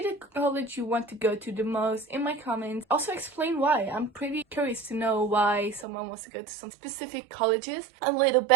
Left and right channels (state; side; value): drops out; left; at 5.9 s